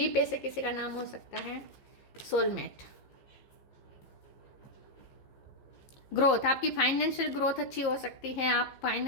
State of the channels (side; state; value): right; late; 15 ms